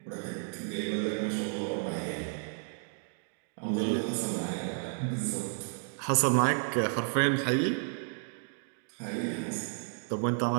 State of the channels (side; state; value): left; silent; 56 dB below the other